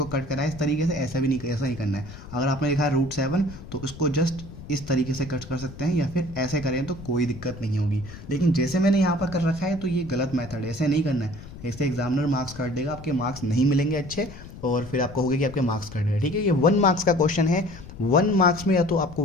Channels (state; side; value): noise; left; rumble, 15 dB below the sound